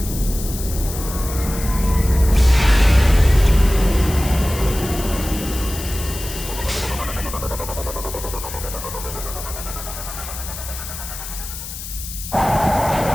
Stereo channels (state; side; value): noise; left; hiss, 10 dB below the sound